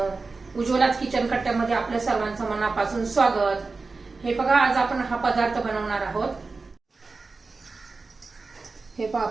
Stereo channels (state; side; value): quieter; left; 4.0 dB